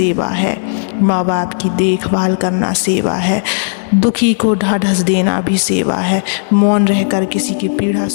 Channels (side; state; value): right; silent; digital silence